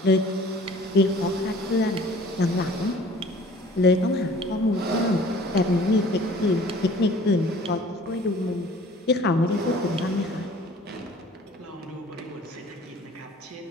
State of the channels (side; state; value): both; normal; correlation 0.50